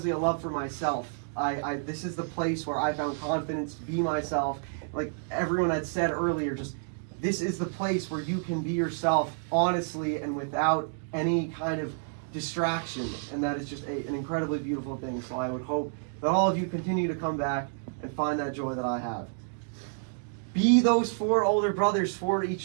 a love for myself. This is the place where I found confidence to be myself. Like everyone had said earlier, just this is the place where you can be yourself honestly and without any kind of distraction, and that is just an incredibly beautiful thing. So I would hope that all of you continue to come back and find that joy that I have. Be those 4 older brothers for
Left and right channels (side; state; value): left; silent; digital silence